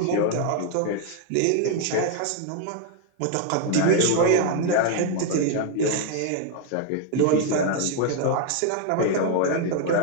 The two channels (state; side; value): different; both; correlation 0.00